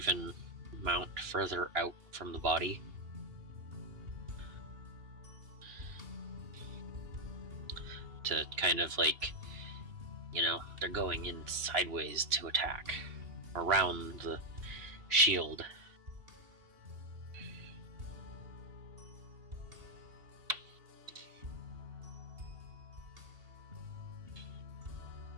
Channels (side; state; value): left; late; 2.8 ms